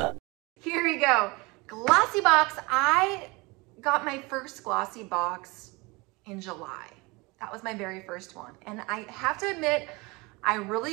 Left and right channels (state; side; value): quieter; left; 25.4 dB